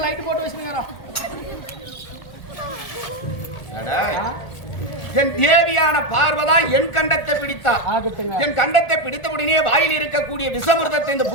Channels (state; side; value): late; right; 1.4 ms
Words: லைட் போட்டு வச்சுக்கிறோம். என் தேவியான பார்வதா என் கண்டத்தை பிடித்தா. என் கண்டத்தை பிடித்த உடனே வாயில் இருக்கக்கூடிய விஷமிர்தத்தை இந்த